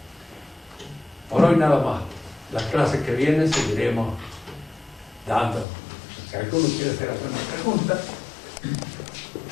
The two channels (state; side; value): drops out; right; at 5.7 s